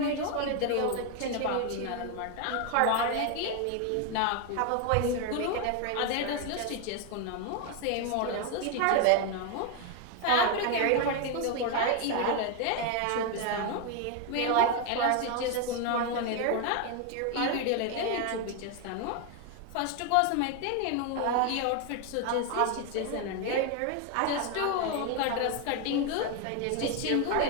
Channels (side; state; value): both; different; correlation 0.01